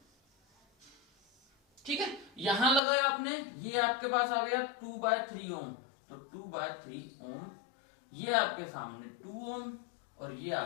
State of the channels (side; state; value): right; drops out; at 2.8 s